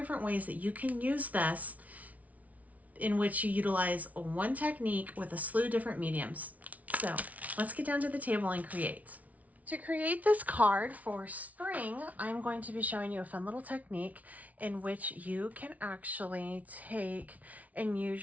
ways that you can use this in which you utilize one technique with a slew of different mediums. So let's get down to the table and create. To create this card for spring, I'm going to be showing you a fun little technique in which you can actually take and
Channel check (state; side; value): late; left; 0.070 ms